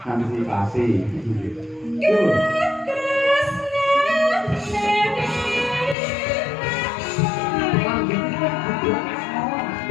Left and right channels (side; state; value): right; drops out; at 6.0 s